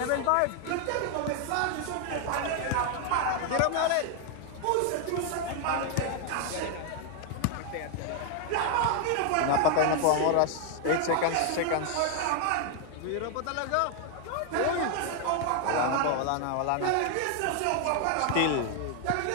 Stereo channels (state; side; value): different; both; correlation 0.00